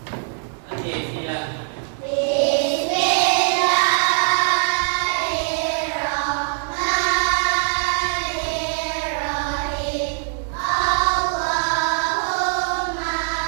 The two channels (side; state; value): left; silent; 64 dB below the other